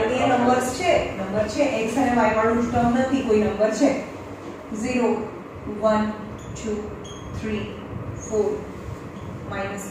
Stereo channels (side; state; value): both; identical; correlation 1.00